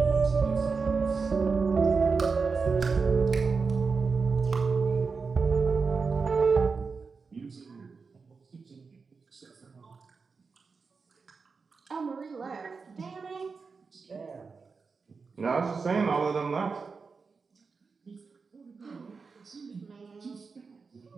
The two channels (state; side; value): quieter; left; 4.8 dB